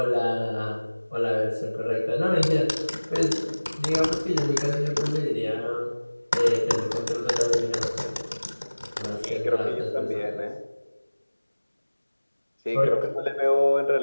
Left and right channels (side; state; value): both; inverted; correlation -1.00